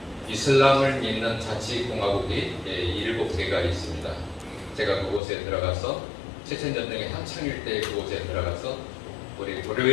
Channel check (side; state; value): right; drops out; at 5.2 s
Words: 이슬람을 믿는 자치공화국이 7개가 있습니다. 제가 그곳에 들어가서 체첸 전쟁의 한창일 때 그곳에 들어가서 우리